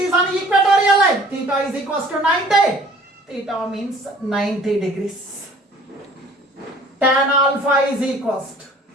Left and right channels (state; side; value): normal; both; correlation 0.51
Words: on equatorial line. Theta is equals to 90. Theta means 90 degrees. Tan alpha is equals to